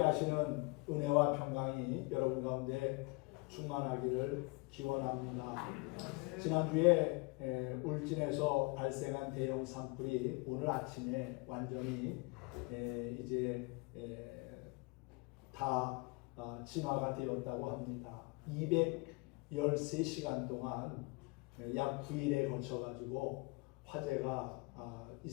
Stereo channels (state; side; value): quieter; right; 27.6 dB